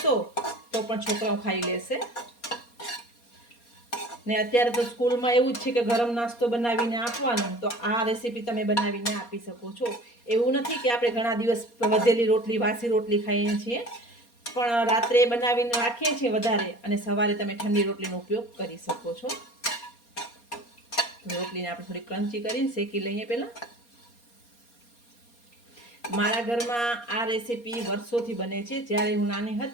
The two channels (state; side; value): late; right; 4.2 ms